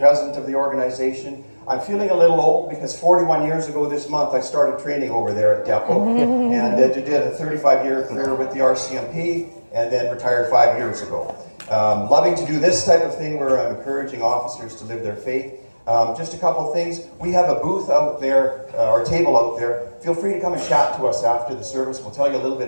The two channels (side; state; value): both; inverted; correlation -1.00